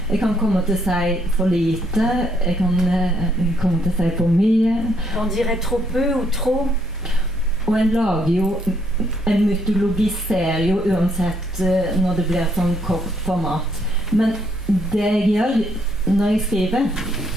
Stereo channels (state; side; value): normal; both; correlation 0.70